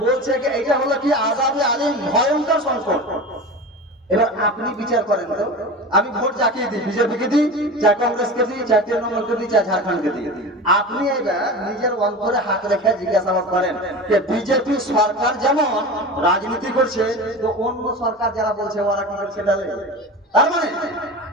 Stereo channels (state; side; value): normal; both; correlation 0.30